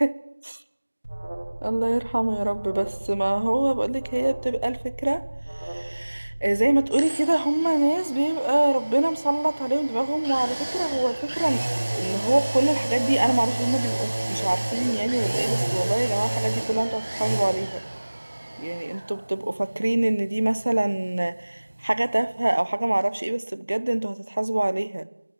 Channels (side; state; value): both; inverted; correlation -1.00